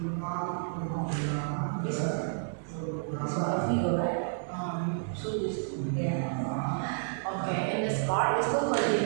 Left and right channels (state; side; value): silent; left; digital silence